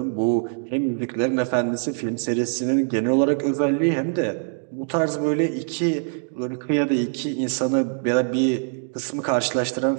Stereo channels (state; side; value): silent; left; digital silence